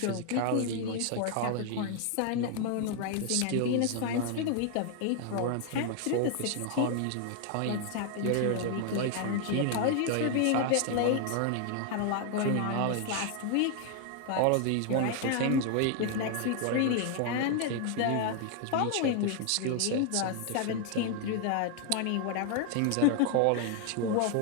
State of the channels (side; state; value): both; different; correlation 0.00